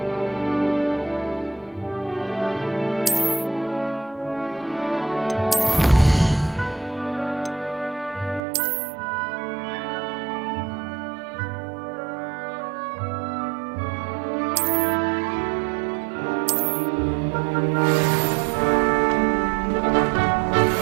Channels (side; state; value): left; drops out; at 8.4 s